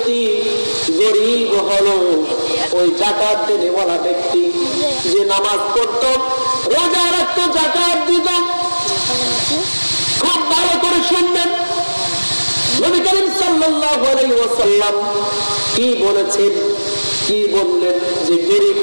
গরিব হলো ওই যাকাত দেনেওয়ালা ব্যক্তি যে নামাজ পড়ত, রোজা রাখত, যাকাত দিত। খুব ভালো করে শুনবেন নবী করিম সাল্লাল্লাহু আলাইহি ওয়াসাল্লাম কি বলেছেন, কি বললেন যে গরিব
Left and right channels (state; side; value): inverted; both; correlation -1.00